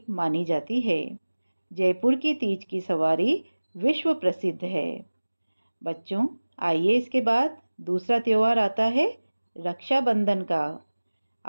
मानी जाती है। जयपुर की तीज की सवारी विश्व प्रसिद्ध है। बच्चों, आइए इसके बाद दूसरा त्योहार आता है रक्षाबंधन का।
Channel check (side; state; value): both; inverted; correlation -1.00